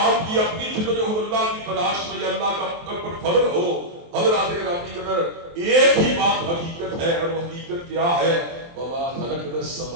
کی اپنی جدوجہد اللہ کی تلاش میں یا اللہ کا پر فضل ہو، حضرات گرامی قدر ایک ہی بات حقیقت ہے، اور وہ حقیقت کیا ہے؟ وما خلقنا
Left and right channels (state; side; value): late; left; 23 ms